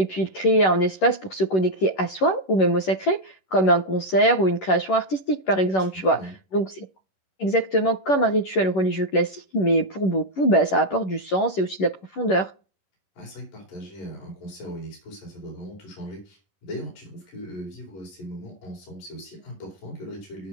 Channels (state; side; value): late; right; 11 ms